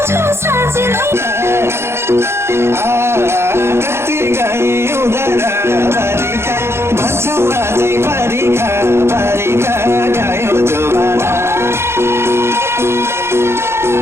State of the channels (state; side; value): late; left; 0.12 ms